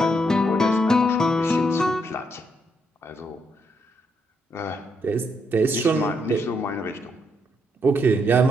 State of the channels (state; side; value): normal; both; correlation 0.76